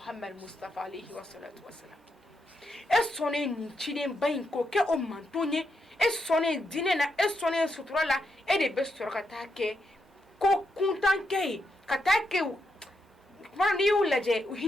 mustafa alayhi wa salatu wa salam e sɔnnen nin cidenba in k'o kɛ o manton ye e sɔnnen diinɛ na e sɔnnen sutura la e de bɛ sɔrɔ ka taa kɛ ko kuntan kɛ ye ka taa kɛ kuma n'i y'u lajɛ u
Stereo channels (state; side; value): normal; both; correlation 0.82